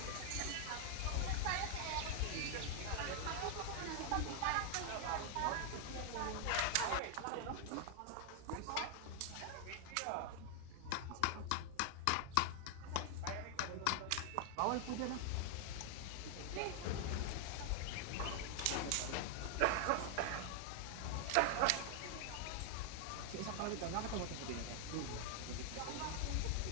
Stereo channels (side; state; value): both; different; correlation 0.00